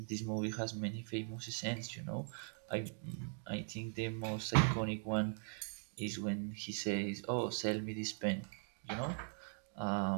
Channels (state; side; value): silent; left; 51 dB below the other